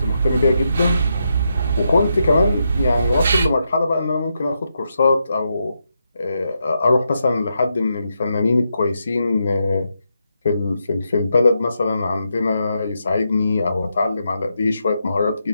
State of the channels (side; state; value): both; inverted; correlation -0.83